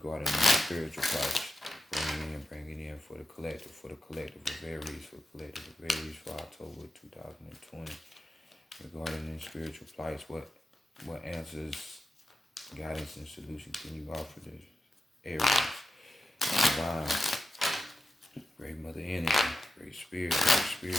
the spiritual process. Bring it in for the collective of Aries, for the collective of Aries for October 2020, regarding the spiritual plights. What answers, guidance, and solution can you offer this Aries? Divine, great mother energy, great spirit, great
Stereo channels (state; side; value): normal; both; correlation 0.90